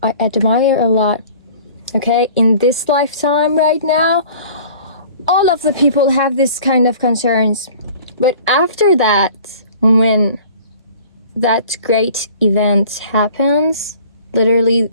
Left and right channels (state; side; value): inverted; both; correlation -0.48